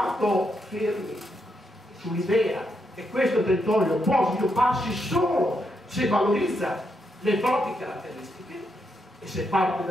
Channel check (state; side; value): normal; both; correlation 0.80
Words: fermi sull'idea che questo territorio può svilupparsi solo se valorizza le proprie caratteristiche e se parte